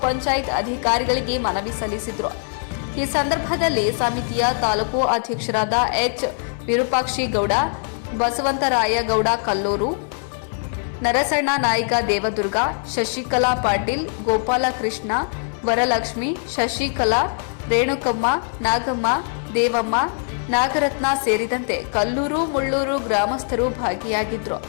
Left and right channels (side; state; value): right; silent; digital silence